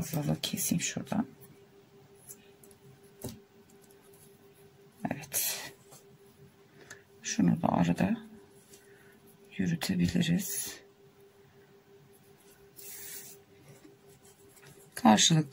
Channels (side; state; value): both; identical; correlation 1.00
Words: keseyim şuradan. Evet. Şunu da arada yürütebiliriz.